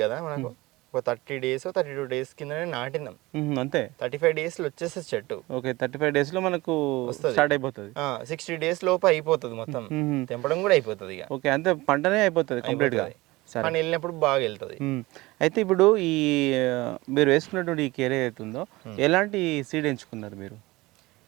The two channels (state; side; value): quieter; left; 20.8 dB